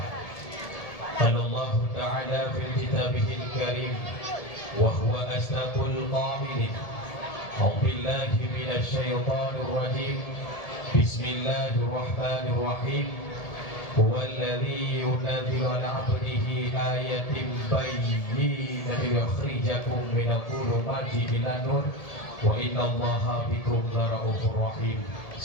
قال الله تعالى في كتابه الكريم وهو اصدق القائلين اعوذ بالله من الشيطان الرجيم بسم الله الرحمن الرحيم هو الذي ينزل على عبده آية بينات ليخرجكم من الظلمات إلى النور وإن الله بكم لرؤوف رحيم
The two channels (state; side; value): late; right; 1.7 ms